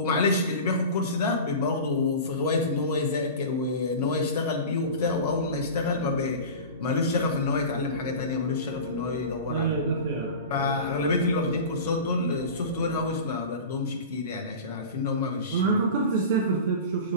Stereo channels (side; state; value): both; inverted; correlation -0.33